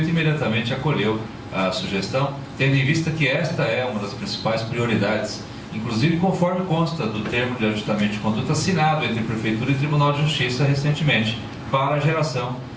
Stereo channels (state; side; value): identical; both; correlation 1.00